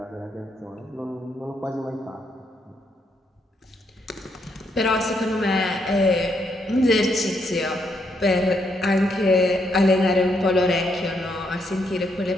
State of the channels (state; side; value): normal; both; correlation 0.76